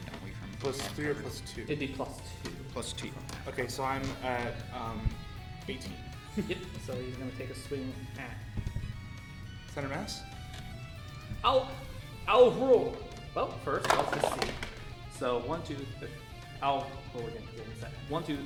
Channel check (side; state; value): both; identical; correlation 1.00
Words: we? From Plus 3 or plus 2? It'd be +2. +2. Okay, so I'm at 18. Yep. So he's gonna take a swing at. Center mass? I'll roll. Well, first, let's just see. So, 1, 2, 3. I'll roll again. Give me a second. 1, 2,